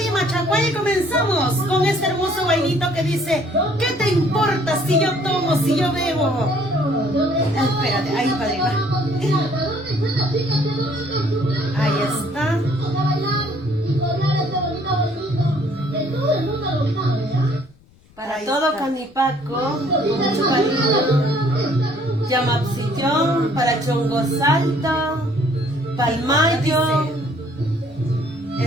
Machacuay! Y comenzamos con este hermoso guainito que dice: ¿qué te importa si yo tomo, si yo bebo? Espérate, ahí, padrino. Ahí está. Para todo Canipaco, mucho cariño. Yamapsillón, para Chongo Salta, Palmayo.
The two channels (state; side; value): noise; left; rumble, 29 dB below the sound